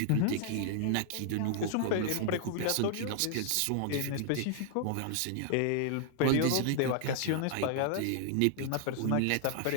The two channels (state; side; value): different; both; correlation 0.00